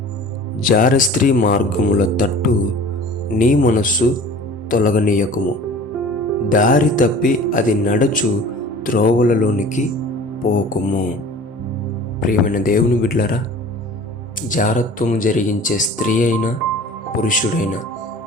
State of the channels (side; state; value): both; normal; correlation 0.43